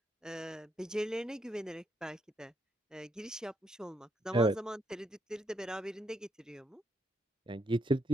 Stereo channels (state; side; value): normal; both; correlation 0.77